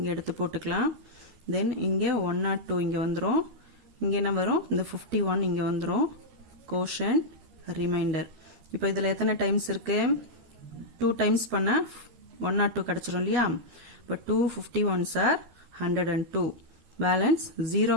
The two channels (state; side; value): late; left; 13 ms